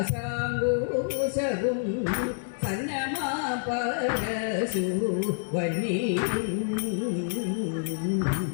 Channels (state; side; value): silent; right; 59 dB below the other